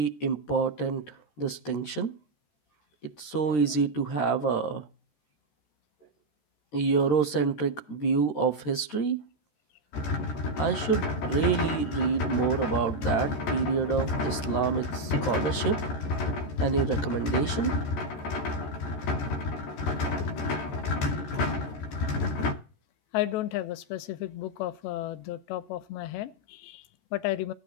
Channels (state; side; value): late; right; 13 ms